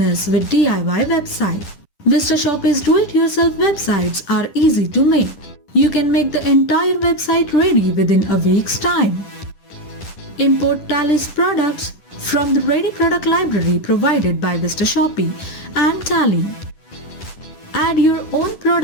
with DIY website. VistaShopee's do-it-yourself websites are easy to make. You can make the entire website ready within a week's time. Import Tally's products from the ready product library provided by VistaShopee and Tally. Add your own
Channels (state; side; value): late; right; 10 ms